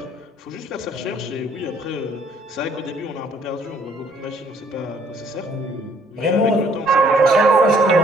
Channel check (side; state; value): both; normal; correlation 0.62